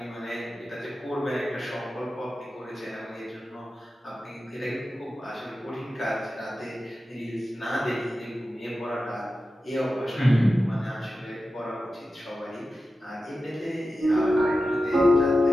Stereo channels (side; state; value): both; normal; correlation 0.93